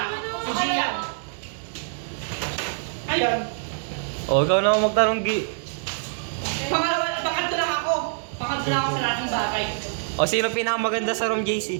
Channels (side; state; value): left; silent; digital silence